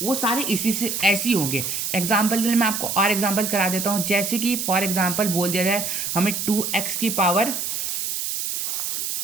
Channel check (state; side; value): noise; right; hiss, 2 dB below the sound